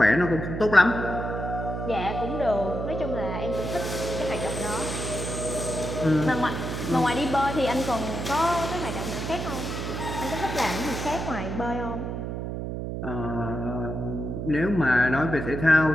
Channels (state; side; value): noise; right; hum, 4 dB below the sound